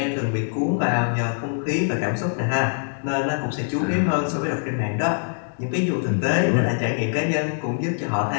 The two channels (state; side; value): silent; right; digital silence